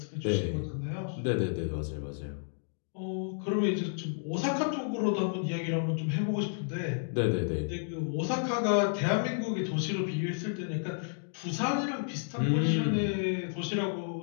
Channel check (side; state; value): right; silent; digital silence